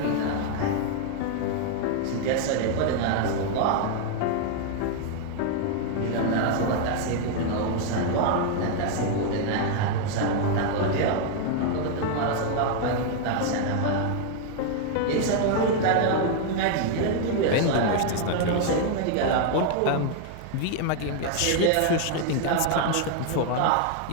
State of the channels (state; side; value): different; both; correlation 0.00